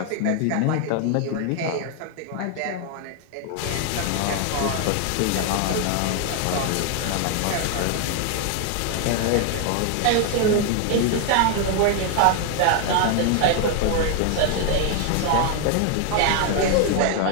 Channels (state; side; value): different; both; correlation 0.00